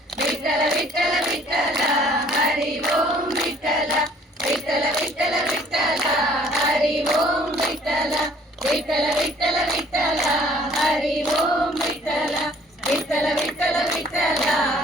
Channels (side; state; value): both; normal; correlation 0.57